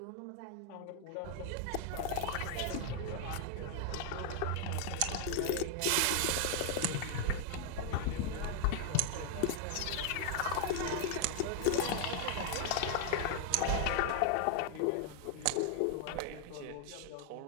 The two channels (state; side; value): different; both; correlation 0.00